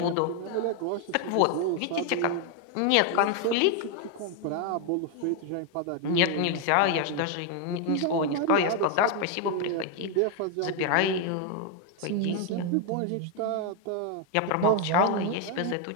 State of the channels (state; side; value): different; both; correlation 0.01